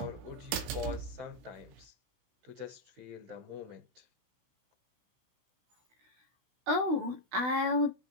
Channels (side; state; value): left; late; 17 ms